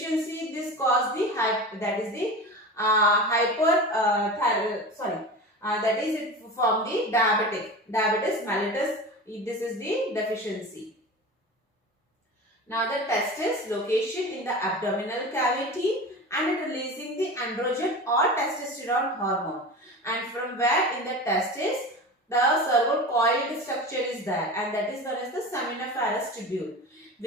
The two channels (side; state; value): both; normal; correlation 0.31